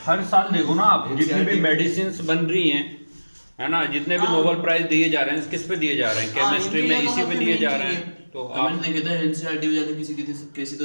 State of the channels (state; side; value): inverted; both; correlation -1.00